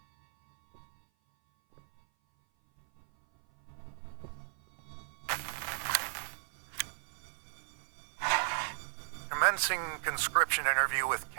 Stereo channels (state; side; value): silent; left; 54 dB below the other